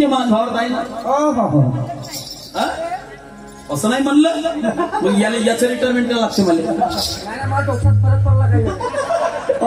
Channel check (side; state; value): both; identical; correlation 1.00